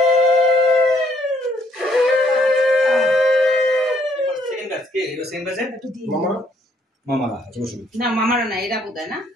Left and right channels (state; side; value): normal; both; correlation 0.68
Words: মামারা না, এরা বোধহয় না,